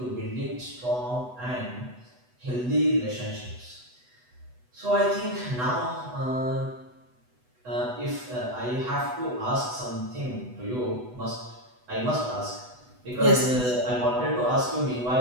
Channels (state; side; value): late; left; 8.1 ms